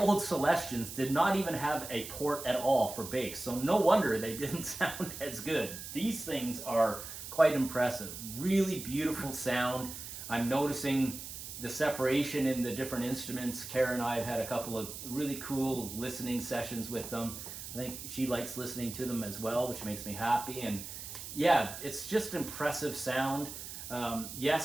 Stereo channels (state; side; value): noise; right; hiss, 10 dB below the sound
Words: Celestions did not even have a port at all for bass, so no wonder they didn't sound as good. These things are quite impressive. Really beautiful sound. I'm noticing the separation in the different instruments. Kara and I have had a couple of really cool listening sessions with them. I think she likes listening to them as well, which makes me happy. And yeah, it's just impressive sound.